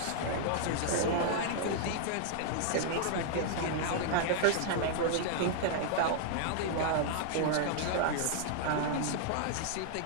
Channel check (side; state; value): both; different; correlation -0.01